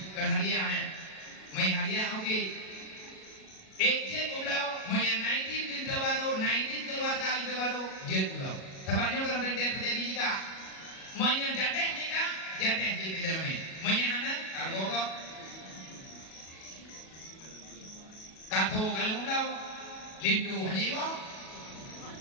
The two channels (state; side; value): late; right; 37 ms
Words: kan hadiah may hadiah oke. Ejek ulau may 19 baru, 19 keluarga baru, jet ulau. Tempatnya kalau terjadi nikah, may jadeh nikah, jadeh di dalamnya. May anak, kargokok, kato kalau ulau, lindu haniwa,